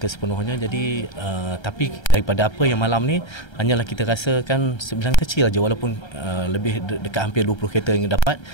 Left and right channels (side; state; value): right; late; 1.3 ms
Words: sepenuhnya. Jadi tapi daripada apa yang malam ni, hanyalah kita rasakan sebilangan kecil aja, walaupun lebih dekat hampir 20 kereta yang dapat,